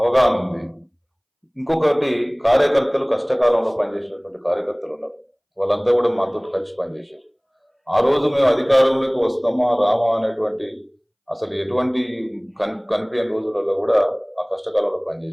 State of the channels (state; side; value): identical; both; correlation 1.00